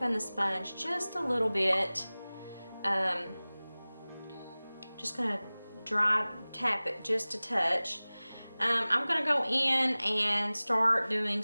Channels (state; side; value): inverted; both; correlation -0.99